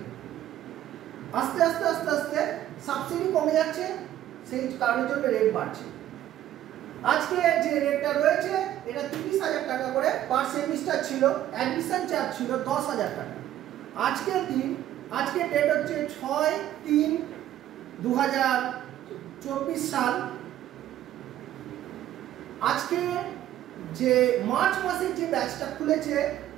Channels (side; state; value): left; quieter; 12.5 dB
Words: আস্তে আস্তে আস্তে আস্তে সাবসিডি কমে যাচ্ছে, সেই কারণের জন্য রেট বাড়ছে। আজকে যে রেটটা রয়েছে এটা 30,000 টাকা করে পার সেমিস্টার ছিল, অ্যাডমিশন চার্জ ছিল 10,000 টাকা। আজকের ডেট হচ্ছে 6/3/2024 সাল। আজকে যে মার্চ মাসের যে ব্যাচটা খুলেছে